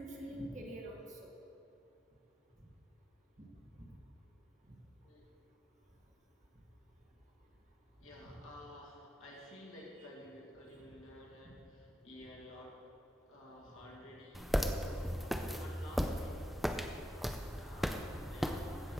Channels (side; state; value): both; normal; correlation 0.88